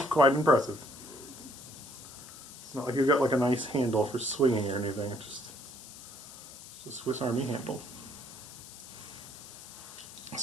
impressive. It's not like you've got like a nice handle for swinging or anything. It's just a Swiss Army handle.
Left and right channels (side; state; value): left; noise; hiss, 15 dB below the sound